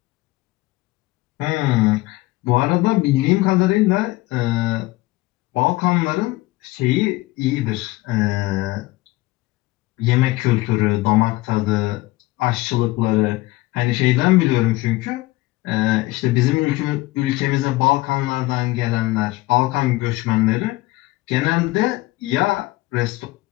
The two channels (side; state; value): right; quieter; 19.6 dB